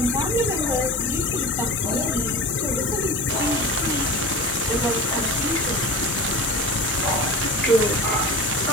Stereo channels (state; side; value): normal; both; correlation 0.33